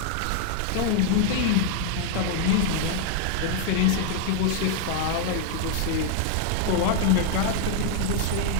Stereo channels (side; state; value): both; different; correlation 0.00